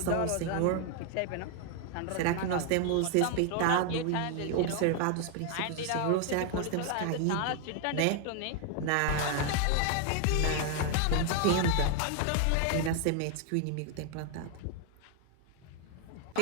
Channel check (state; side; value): different; both; correlation 0.00